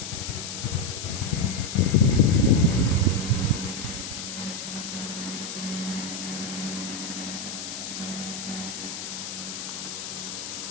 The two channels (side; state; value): left; noise; hiss, 7 dB below the sound